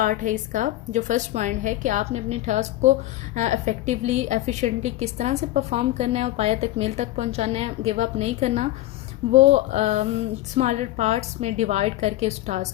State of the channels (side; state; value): right; quieter; 15.8 dB